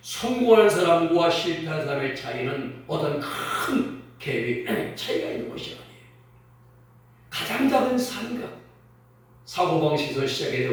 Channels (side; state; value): both; identical; correlation 1.00